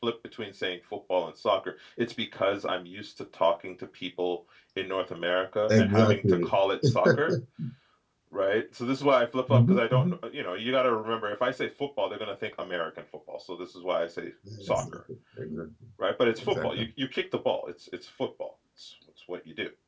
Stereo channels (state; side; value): identical; both; correlation 1.00